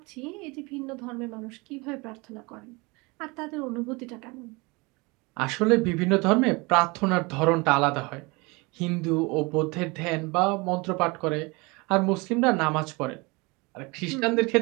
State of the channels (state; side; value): quieter; left; 26.3 dB